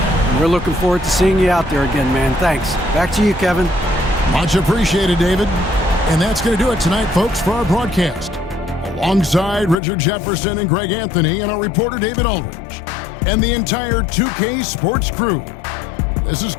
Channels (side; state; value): right; drops out; at 9.8 s